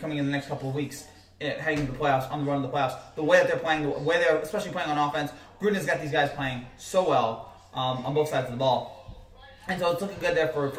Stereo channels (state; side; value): identical; both; correlation 1.00